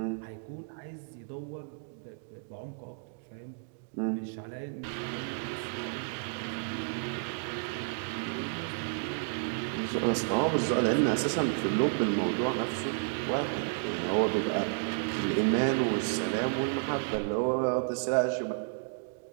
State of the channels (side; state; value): left; silent; digital silence